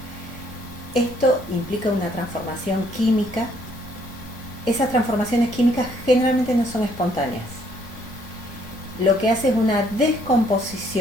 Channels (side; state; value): both; normal; correlation 0.66